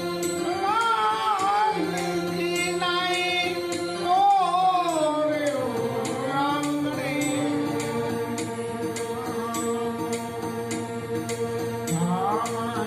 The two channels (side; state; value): both; identical; correlation 1.00